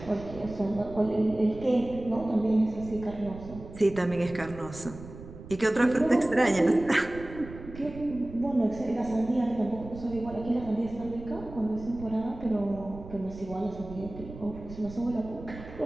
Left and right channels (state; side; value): noise; right; rumble, 14 dB below the sound